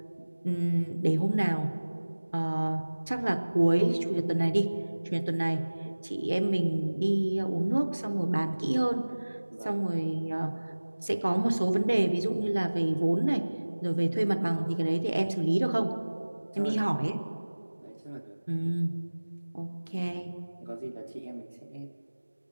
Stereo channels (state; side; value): inverted; both; correlation -1.00